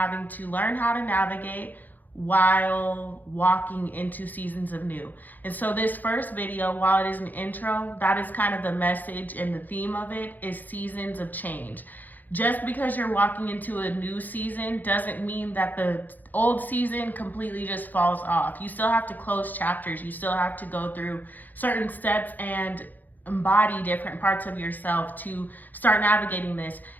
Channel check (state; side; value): late; right; 0.084 ms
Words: to learn how to navigate while walking into seasons of new. And so this first video, while it is an intro, that is kind of the message, and the theme of it is seasons of change. Just because you're walking into a new season doesn't mean that the old season completely just falls off. You still have to close chapters. You still have to go through certain steps and embody different parts of yourself to start navigating this.